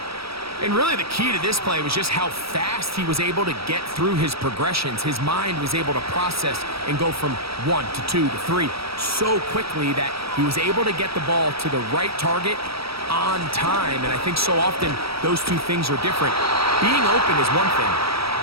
And really the key to this play was just how fast he was able to get through his progressions. His mind was able to process and go from 1 to 2 to 3 so quickly that he was able to get the ball to the right target on time. And I think so often those two things are different. Being open is one thing.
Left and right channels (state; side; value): late; left; 0.76 ms